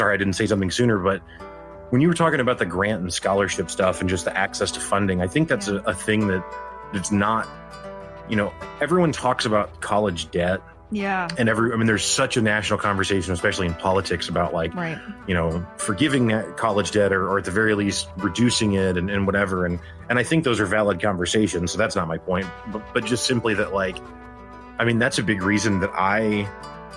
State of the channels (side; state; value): both; identical; correlation 1.00